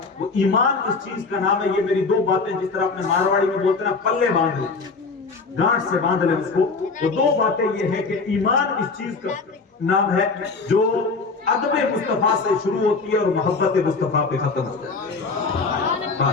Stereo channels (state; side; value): quieter; right; 4.2 dB